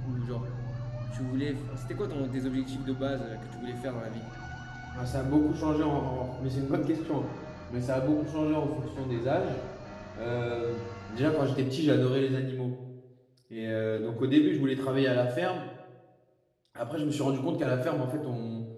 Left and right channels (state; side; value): identical; both; correlation 1.00